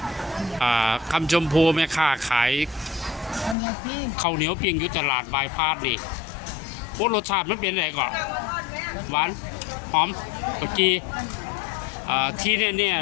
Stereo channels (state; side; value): drops out; right; at 3.6 s